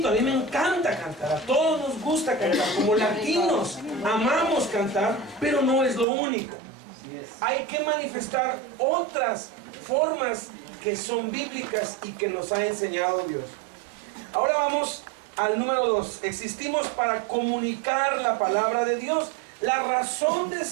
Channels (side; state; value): left; drops out; at 6.1 s